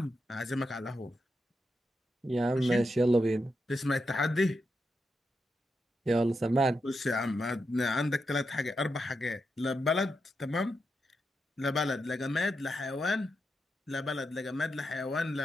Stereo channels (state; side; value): normal; both; correlation 0.85